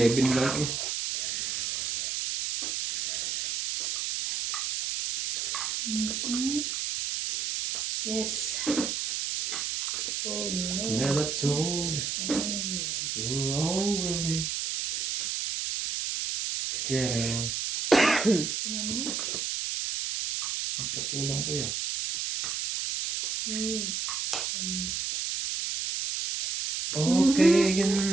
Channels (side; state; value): right; noise; hiss, 1 dB below the sound